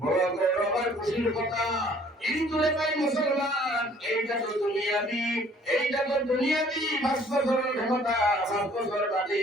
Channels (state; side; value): normal; both; correlation 0.56